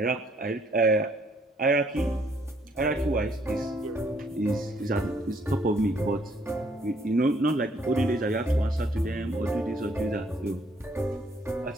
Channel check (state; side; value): normal; both; correlation 0.66